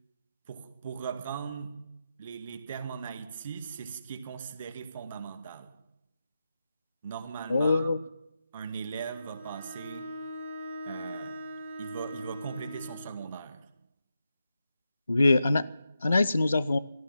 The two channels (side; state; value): both; inverted; correlation -0.88